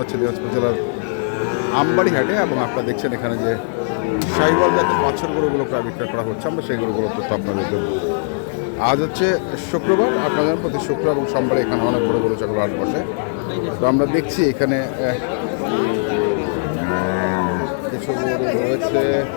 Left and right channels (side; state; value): right; silent; 66 dB below the other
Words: দিনাজপুর জেলার আমবাড়ি হাটে। এবং আপনারা দেখছেন এখানে যে শাহিওয়াল জাতের বাছুর গরুগুলো প্রায় বিক্রয় করা হচ্ছে, আমরা সেই গরুগুলো তথ্য আপনাদের দেবো। আজ হচ্ছে শুক্রবার, আপনাদের প্রতি শুক্র এবং সোমবারে এখানে অনেক বড় গরু ছাগল হাট বসে। তো আমরা দেখছি এখানে কিছু গরু রয়েছে।